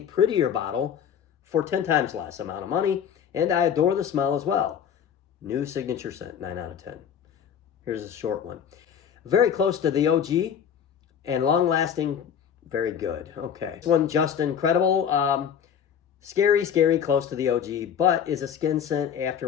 prettier bottle for 10 times less amount of money, and I adore the smell as well. New signature scent, 9 out of 10. Here's a short one. Very close to the OG, and long-lasting, very good. Okay. This one, just incredible. Scary, close to the OG, but is a skin scent after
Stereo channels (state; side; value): quieter; right; 8.2 dB